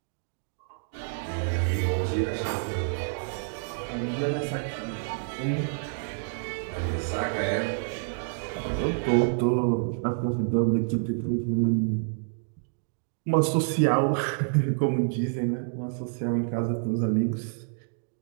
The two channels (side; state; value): left; silent; digital silence